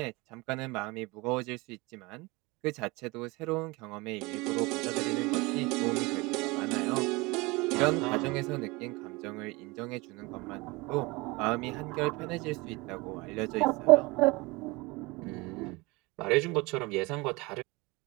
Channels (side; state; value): left; quieter; 24.3 dB